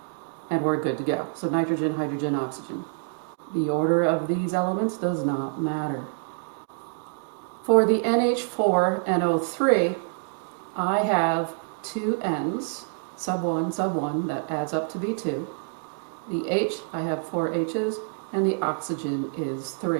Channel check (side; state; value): left; silent; 60 dB below the other